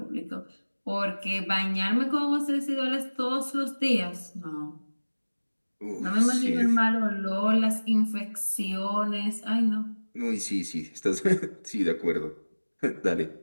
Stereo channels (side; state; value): both; inverted; correlation -1.00